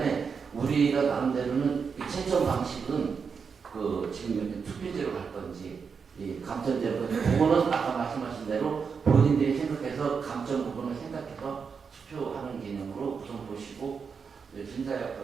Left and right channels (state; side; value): quieter; left; 5.8 dB